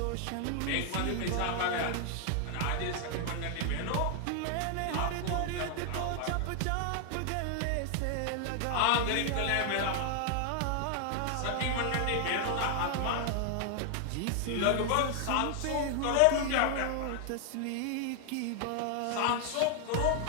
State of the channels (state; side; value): different; both; correlation 0.00